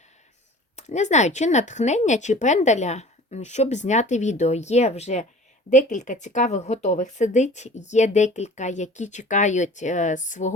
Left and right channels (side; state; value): both; normal; correlation 0.45